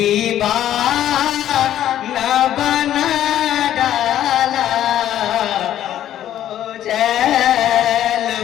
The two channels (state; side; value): quieter; right; 11.8 dB